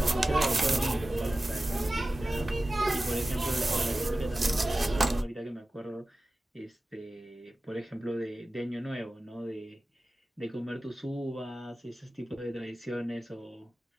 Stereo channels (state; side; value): normal; both; correlation 0.96